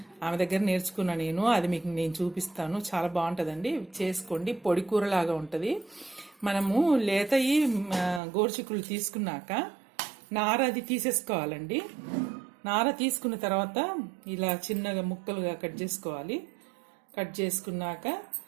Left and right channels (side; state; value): left; drops out; at 8.2 s